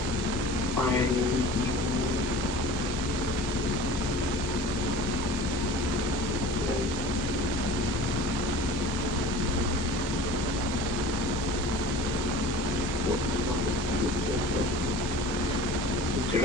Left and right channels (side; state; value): both; normal; correlation 0.40